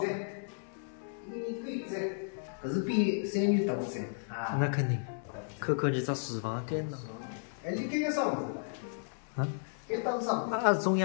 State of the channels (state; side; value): silent; right; digital silence